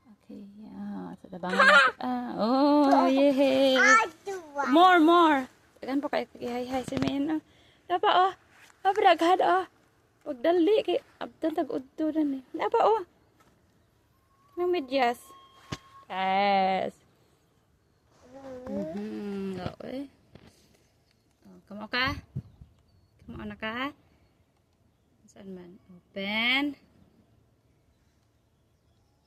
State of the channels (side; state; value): both; identical; correlation 1.00